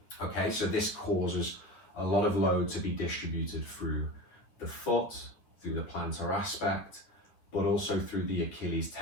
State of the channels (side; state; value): right; late; 9.4 ms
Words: Okay, so this causes a lot of load to be distributed through the foot, through the plantar aspect, but also through the Achilles